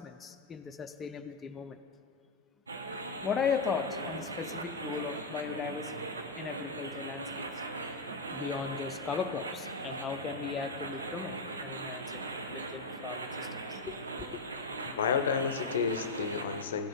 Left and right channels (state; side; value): quieter; right; 3.4 dB